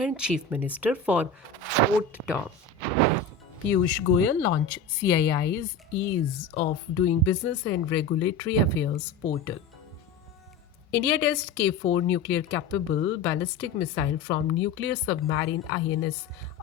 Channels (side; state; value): right; quieter; 4.3 dB